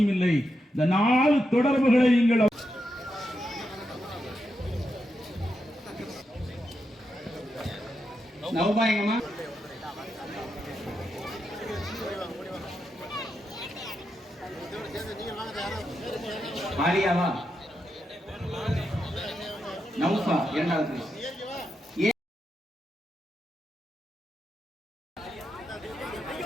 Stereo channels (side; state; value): both; normal; correlation 0.85